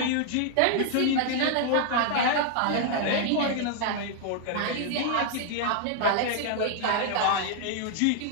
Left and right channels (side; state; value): both; different; correlation 0.00